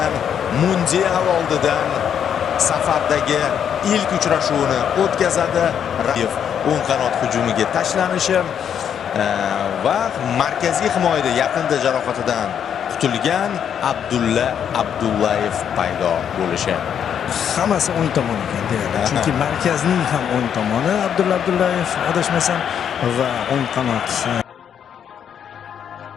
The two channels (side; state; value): right; quieter; 8.5 dB